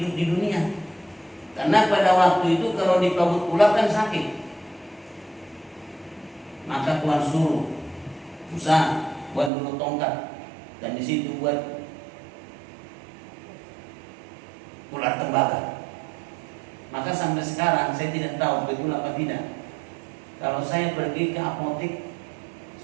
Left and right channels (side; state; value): left; drops out; at 9.5 s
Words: dunia. Karena pada waktu itu kalau dipagut ular kan sakit. Maka Tuhan suruh Musa buat dulu tongkat, dan di situ buat ular tembaga. Maka sampai sekarang saya tidak tahu betul apa tidak. Kalau saya pergi ke apotek,